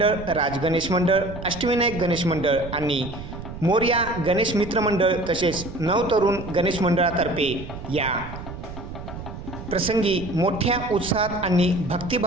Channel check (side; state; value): right; noise; rumble, 11 dB below the sound